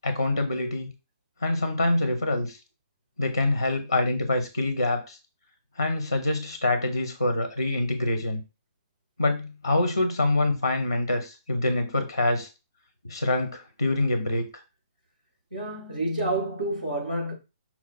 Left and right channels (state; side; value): inverted; both; correlation -0.80